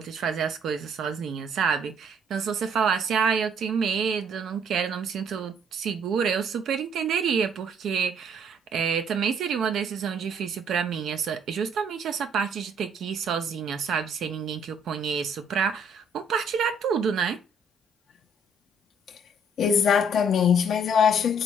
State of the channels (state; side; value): normal; both; correlation 0.63